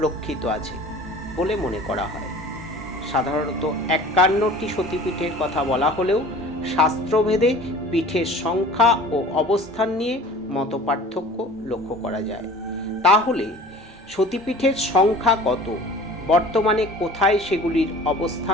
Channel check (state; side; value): normal; both; correlation 0.44